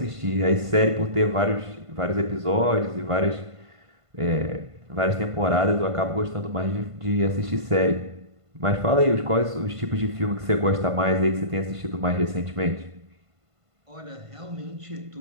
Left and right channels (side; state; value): left; late; 1.5 ms